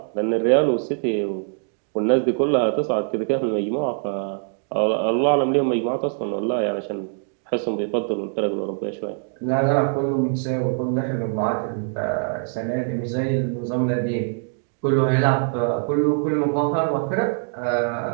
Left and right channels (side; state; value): left; silent; 57 dB below the other